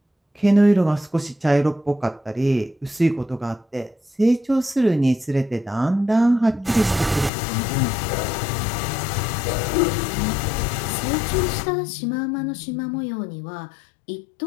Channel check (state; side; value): drops out; right; at 7.3 s